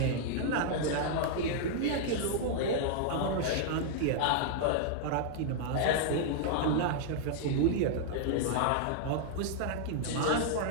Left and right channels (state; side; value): different; both; correlation -0.01